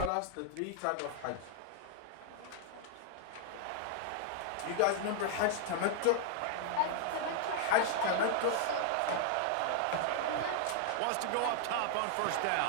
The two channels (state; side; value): different; both; correlation 0.00